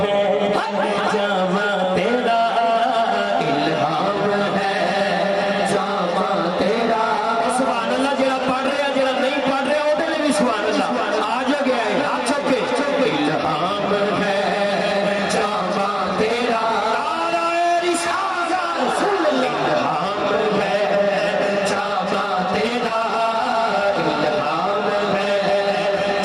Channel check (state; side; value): identical; both; correlation 1.00